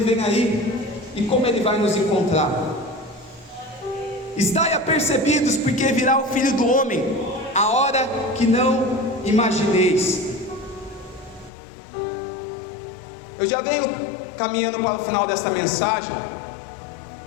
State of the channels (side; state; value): right; drops out; at 11.5 s